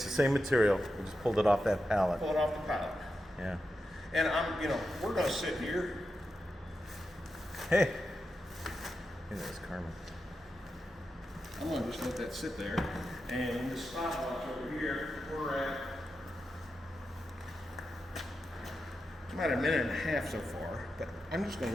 the same material. We just pulled it off that pallet. Pull it off the pallet. Yeah. And you know, we're going to sit here. Hey. Hey, there's Carmen. I'm going to just let that sit there. And the stopwatch over here, we're at about a minute and a half so far. But I'm just going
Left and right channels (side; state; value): both; normal; correlation 0.89